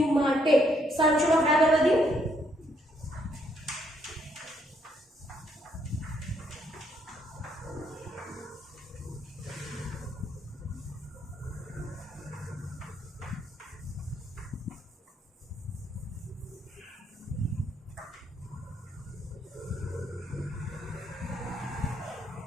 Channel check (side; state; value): both; normal; correlation 0.72